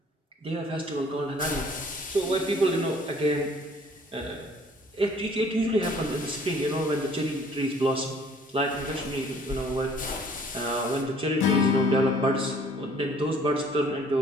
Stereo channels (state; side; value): normal; both; correlation 0.57